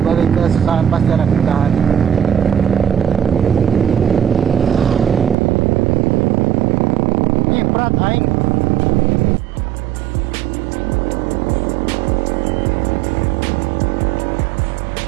kesusahan pasti ada kemudahan. Berat aing.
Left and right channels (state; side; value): drops out; left; at 5.4 s